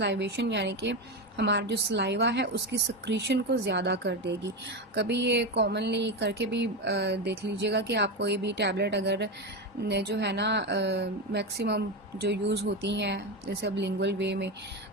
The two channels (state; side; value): normal; both; correlation 0.15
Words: यानी कि हमारा जो सलाइवा है उसकी सक्रीशन को ज़्यादा कर देगी। कभी ये कॉमनली करके भी देख लीजिएगा कि आप कोई भी टैबलेट अगर जो है ना मैक्सिमम जो यूज़ होती हैं जैसे अब लिंगुअल वे में,